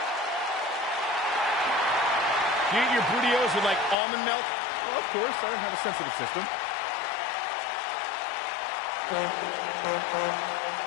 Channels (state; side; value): drops out; right; at 4.0 s